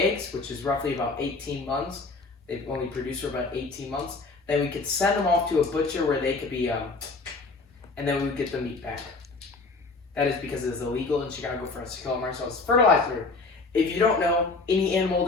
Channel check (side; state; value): right; quieter; 3.8 dB